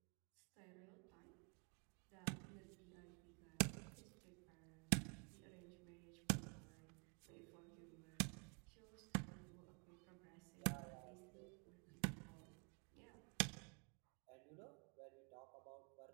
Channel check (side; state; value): left; quieter; 37.8 dB